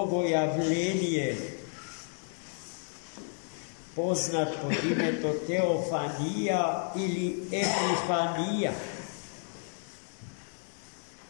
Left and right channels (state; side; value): silent; right; 57 dB below the other